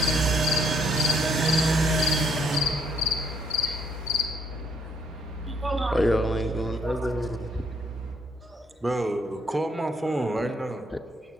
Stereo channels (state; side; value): normal; both; correlation 0.69